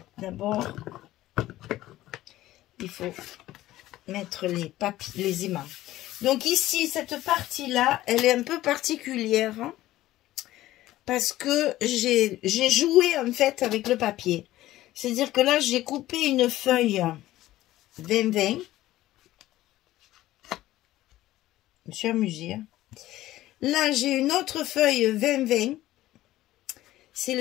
D'abord, il faut mettre les aimants. Donc ici, cette partie-là, elle est un peu particulière. Hein. parce que j'ai joué en fait avec le papier. C'est-à-dire que là, j'ai coupé une feuille 20-20. Je me suis amusée. Hein. Là, j'ai une autre feuille 20-20. C'est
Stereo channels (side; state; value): right; quieter; 15.3 dB